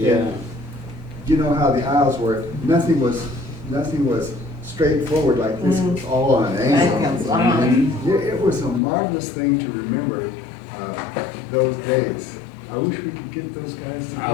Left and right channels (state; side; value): drops out; right; at 8.8 s